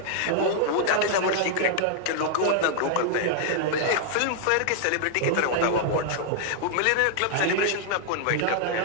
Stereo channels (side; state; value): both; different; correlation -0.01